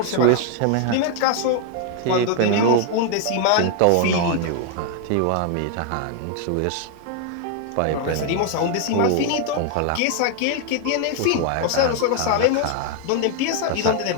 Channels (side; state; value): both; different; correlation 0.00